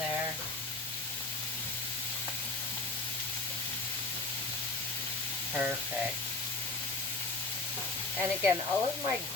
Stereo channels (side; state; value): right; quieter; 3.4 dB